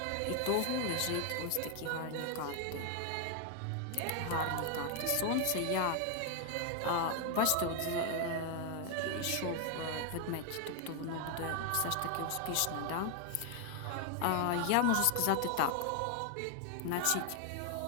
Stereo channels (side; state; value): both; different; correlation 0.00